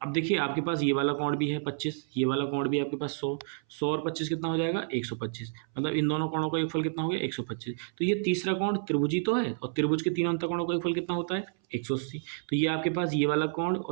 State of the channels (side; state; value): left; silent; 58 dB below the other